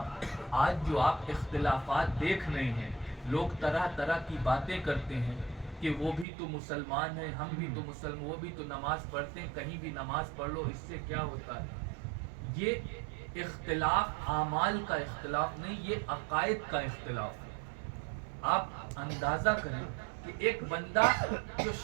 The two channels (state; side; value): drops out; left; at 6.2 s